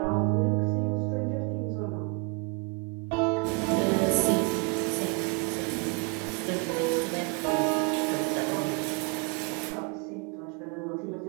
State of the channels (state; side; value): quieter; left; 32.7 dB